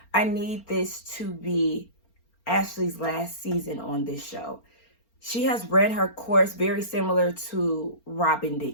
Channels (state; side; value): late; right; 4.4 ms